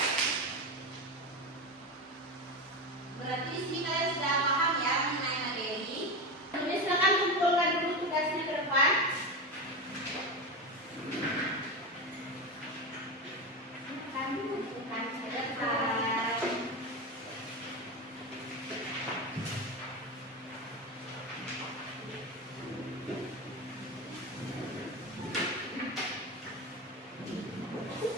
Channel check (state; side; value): normal; both; correlation 0.20